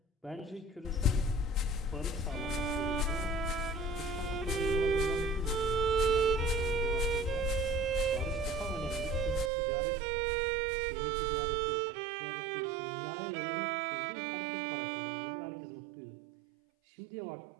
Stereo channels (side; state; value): left; drops out; at 9.5 s